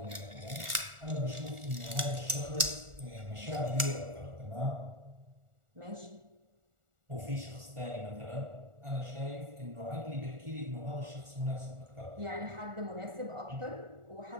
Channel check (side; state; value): left; late; 1.4 ms